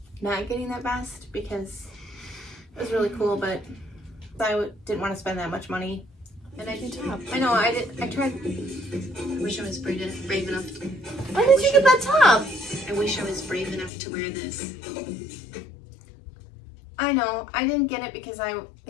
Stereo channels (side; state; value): right; drops out; at 13.9 s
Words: not getting that vest because it was really cool, but I didn't want to spend that much money. And I do top. I know, I tried. I wish I was brave enough. Why did you get that top? I wish I was brave enough to wear this. I know, I didn't get it because